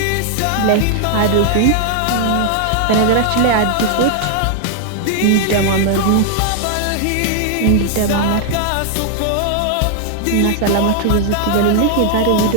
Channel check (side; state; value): both; different; correlation 0.00